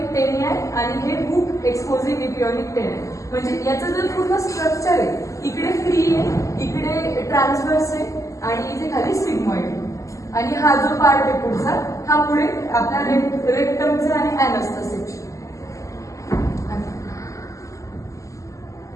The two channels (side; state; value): right; late; 0.16 ms